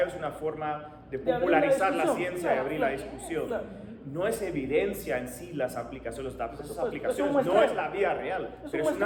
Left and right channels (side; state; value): both; identical; correlation 1.00